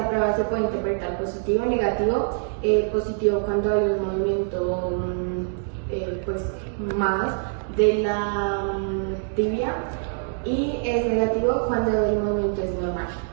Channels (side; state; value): left; silent; digital silence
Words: prueba se puede interpretar positivo o negativo. Positivo cuando hay un movimiento más de la tibia, y es negativo cuando el movimiento es normal.